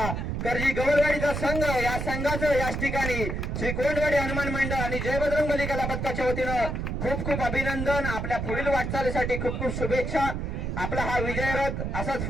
कर्जी गवळवाडीचा संघ. या संघाचं याच ठिकाणी श्री कोंडवाडी हनुमान मंडळ आणि जय बजरंगबली कला पथकाच्या वतीनं खूप खूप अभिनंदन. आपल्या पुढील वाटचालीसाठी खूप खूप शुभेच्छा. आपला हा विजयरथ असाच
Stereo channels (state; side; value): noise; right; rumble, 3 dB below the sound